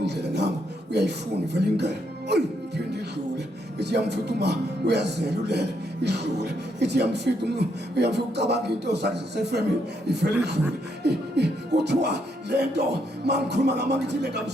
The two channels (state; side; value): normal; both; correlation 0.76